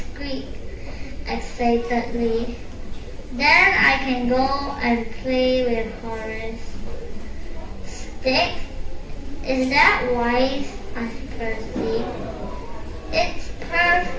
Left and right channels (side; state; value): both; identical; correlation 1.00